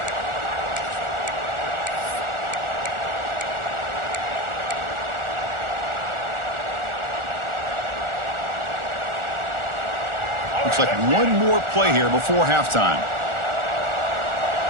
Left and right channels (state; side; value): late; left; 1.4 ms